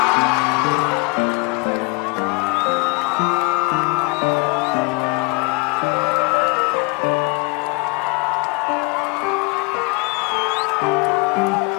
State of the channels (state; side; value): quieter; right; 30.9 dB